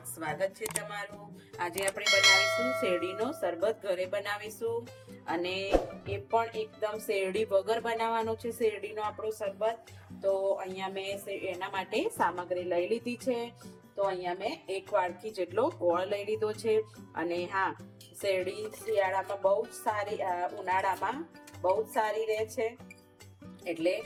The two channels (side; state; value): both; identical; correlation 1.00